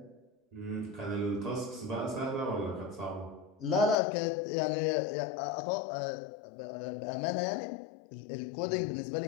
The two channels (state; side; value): drops out; right; at 4.0 s